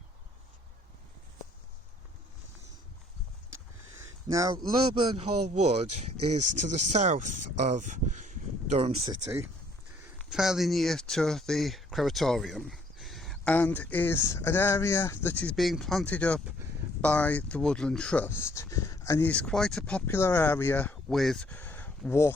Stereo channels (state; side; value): normal; both; correlation 0.63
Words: Now, Lowburn Hall Wood is to the south of Durham City, fairly near to the crematorium, and is an area that is being planted up by the Woodland Trust, and is quite a popular area with